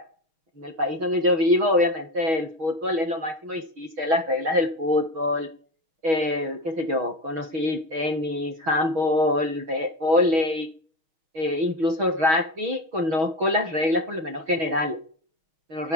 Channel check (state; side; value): late; left; 6.2 ms